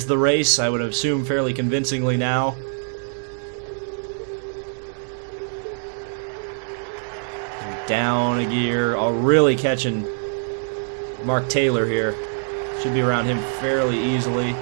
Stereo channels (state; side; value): silent; left; digital silence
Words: the race, I would assume fairly convincingly now. Down a gear. Oh, really catching Mark Taylor here. Should be around him fairly easily.